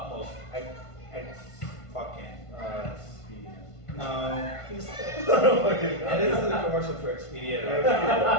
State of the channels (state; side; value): late; right; 1.5 ms